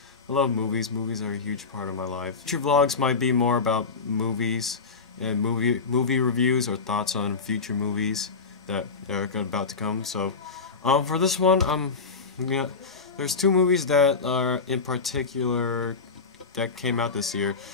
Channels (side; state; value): right; quieter; 4.6 dB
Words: movies. Movies are a huge part of my life. Future vlogs might be more about movies and movie reviews or thoughts on future movies that are about to come. So, for this one, there's two movies that are in particular that came out this year